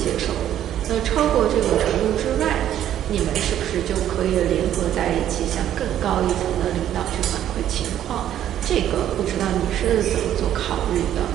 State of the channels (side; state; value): left; quieter; 11.2 dB